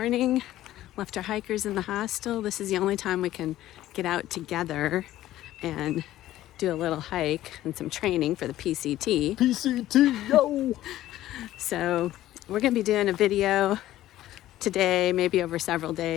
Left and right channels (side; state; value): right; quieter; 14.2 dB